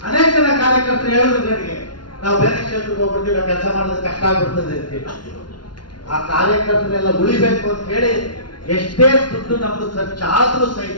ಅನೇಕ ಜನ ಕಾರ್ಯಕರ್ತರು ಹೇಳಿದ್ರು ನನಗೆ, ನಾವು ಬೇರೆ ಕ್ಷೇತ್ರಕ್ಕೆ ಹೋಗ್ಬಿಡ್ತೀವಿ, ನಾವು ಕೆಲಸ ಮಾಡೋದು ಕಷ್ಟ ಆಗ್ಬಿಡ್ತದೆ ಅಂತ ಹೇಳಿ. ಆ ಕಾರ್ಯಕರ್ತರೆಲ್ಲ ಉಳಿಬೇಕು ಅಂತ ಹೇಳಿ ಎಷ್ಟೇ ದುಡ್ಡು ನಮ್ದು ಖರ್ಚಾದ್ರೂ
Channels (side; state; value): right; late; 0.71 ms